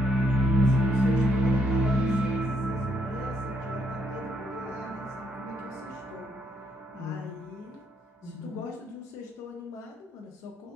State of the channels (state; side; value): normal; both; correlation 0.73